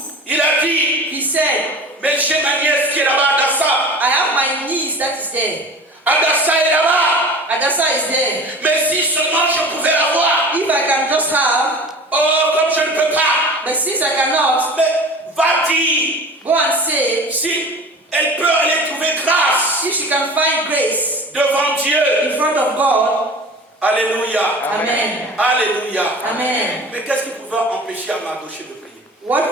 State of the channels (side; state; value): both; normal; correlation 0.39